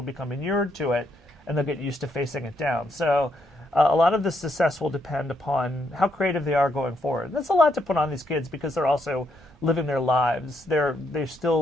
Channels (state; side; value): normal; both; correlation 0.76